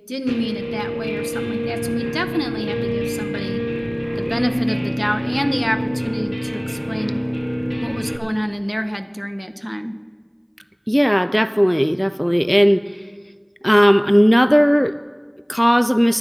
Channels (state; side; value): identical; both; correlation 1.00